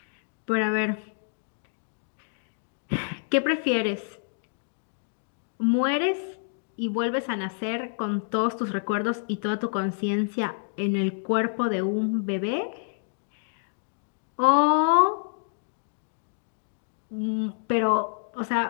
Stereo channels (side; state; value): right; silent; digital silence